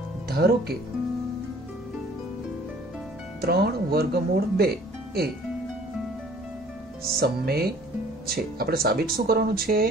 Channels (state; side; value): normal; both; correlation 0.54